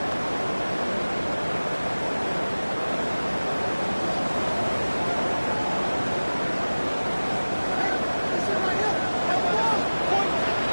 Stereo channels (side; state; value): both; inverted; correlation -1.00